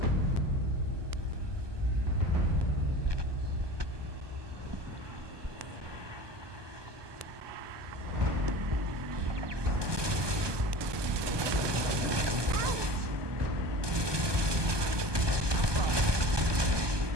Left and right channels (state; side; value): late; left; 1.2 ms